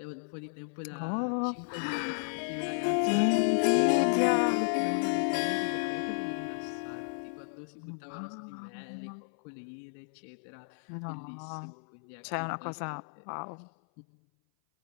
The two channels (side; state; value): right; silent; 56 dB below the other